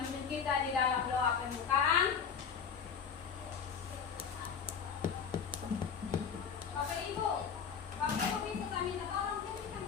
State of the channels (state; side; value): quieter; right; 6.7 dB